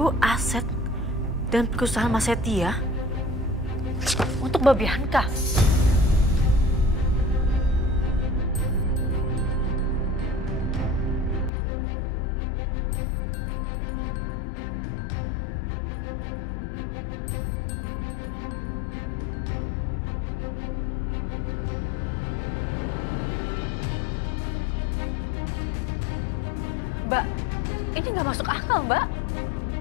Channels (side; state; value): right; drops out; at 11.5 s